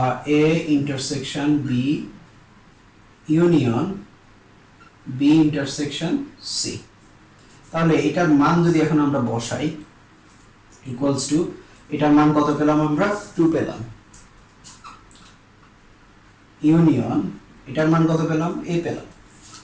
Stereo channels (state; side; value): identical; both; correlation 1.00